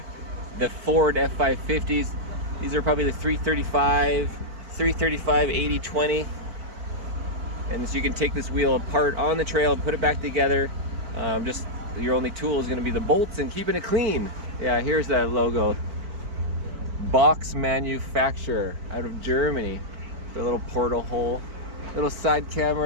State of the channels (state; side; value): late; left; 4.5 ms